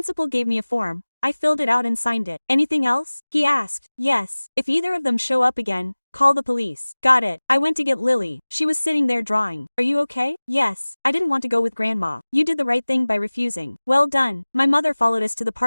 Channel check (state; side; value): inverted; both; correlation -1.00